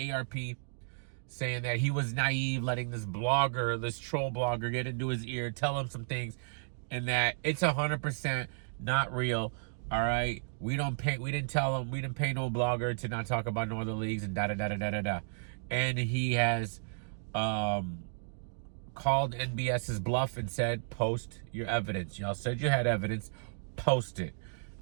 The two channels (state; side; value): silent; left; digital silence